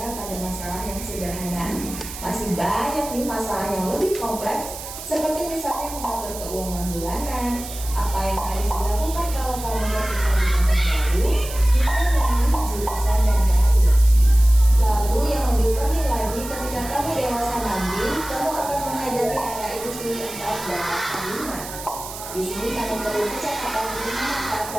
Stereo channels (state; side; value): noise; right; hiss, 11 dB below the sound